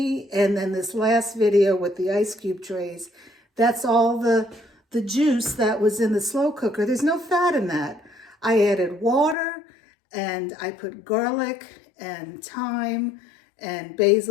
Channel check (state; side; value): drops out; right; at 9.3 s